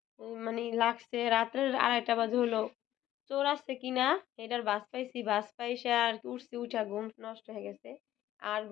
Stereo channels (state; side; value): quieter; right; 13.4 dB